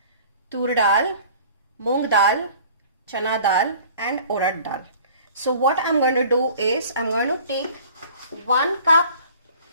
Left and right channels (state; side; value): inverted; both; correlation -0.48